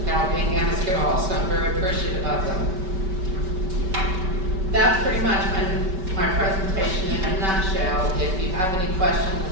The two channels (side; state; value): left; late; 5.3 ms